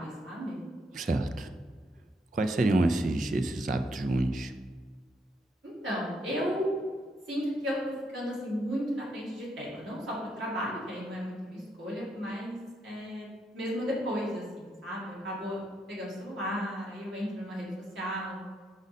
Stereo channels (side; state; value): both; normal; correlation 0.77